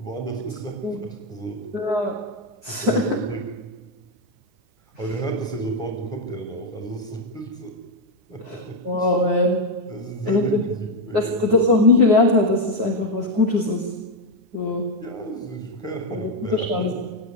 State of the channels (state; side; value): late; left; 9.7 ms